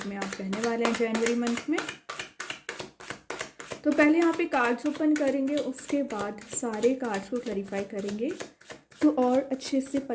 में आप रहने वाले हैं जनवरी मंथ में। तो पहले यहाँ पे कार्ड्स ओपन करेंगे, उसके बाद सारे कार्ड्स को क्लैरिफाई करेंगे तो और अच्छे से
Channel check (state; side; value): identical; both; correlation 1.00